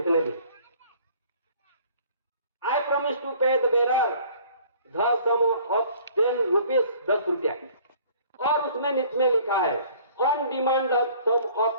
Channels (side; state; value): both; inverted; correlation -0.54